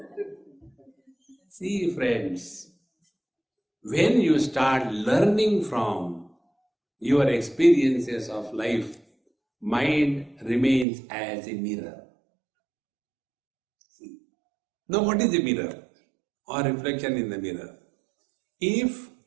See, friends, when you start learning from your experiences of life, mind remains as a mirror. Now, what is a mirror or reflection in the mirror? If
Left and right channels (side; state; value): left; drops out; at 10.9 s